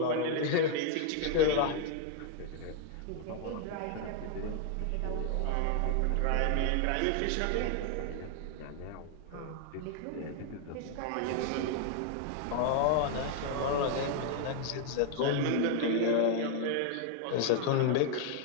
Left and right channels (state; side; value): different; both; correlation 0.00